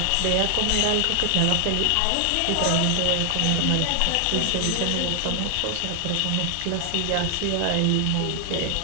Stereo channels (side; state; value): both; different; correlation 0.00